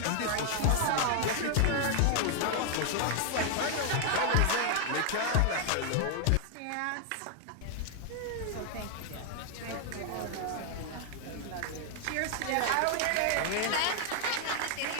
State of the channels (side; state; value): both; different; correlation 0.00